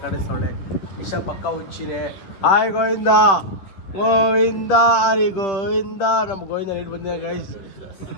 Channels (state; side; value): late; right; 10 ms